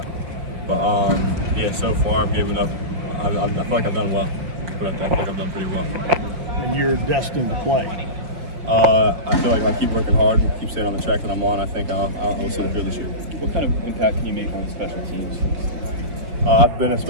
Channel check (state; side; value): late; left; 5.7 ms